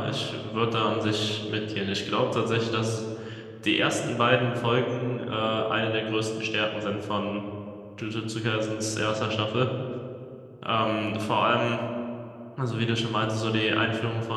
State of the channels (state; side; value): identical; both; correlation 1.00